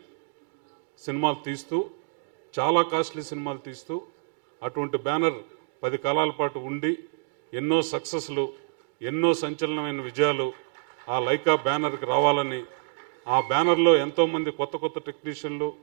సినిమాలు తీస్తూ, చాలా కాస్ట్లీ సినిమాలు తీస్తూ అటువంటి బ్యానర్ 10 కాలాల పాటు ఉండి ఎన్నో సక్సెస్లు, ఎన్నో సంచలనమైన విజయాలు ఆ లైకా బ్యానర్కి రావాలని, ఆ బ్యానర్లో ఎంతోమంది కొత్త టెక్నీషియన్లు,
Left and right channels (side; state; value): left; silent; digital silence